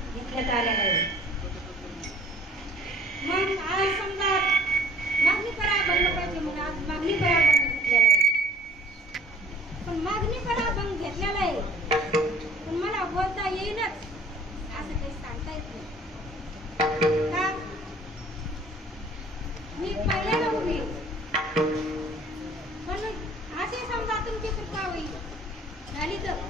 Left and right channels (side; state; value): both; normal; correlation 0.52